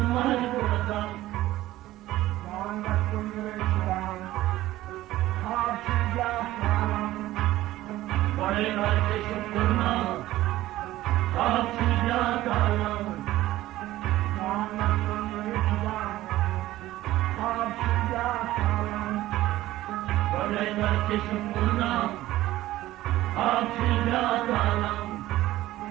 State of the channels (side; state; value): left; quieter; 15.8 dB